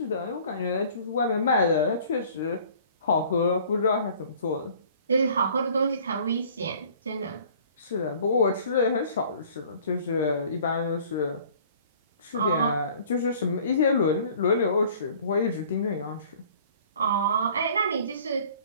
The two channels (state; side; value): inverted; both; correlation -0.51